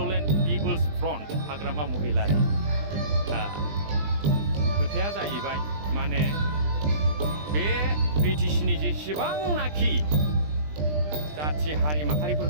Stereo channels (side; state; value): left; late; 20 ms